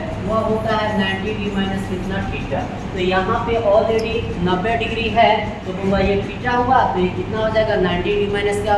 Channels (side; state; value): both; identical; correlation 1.00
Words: वह होता है 90 डिग्री माइनस कितना, थीटा। तो यहाँ पे ऑलरेडी 90 डिग्री है, तो हुआ ये थीटा हुआ, तो ये कितना हो जाएगा, 90 डिग्री माइनस क्या